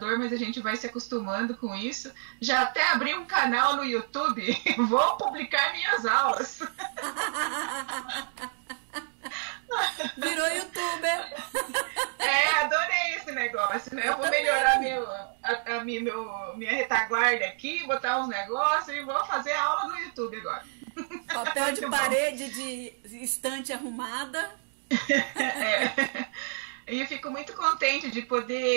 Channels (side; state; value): left; silent; digital silence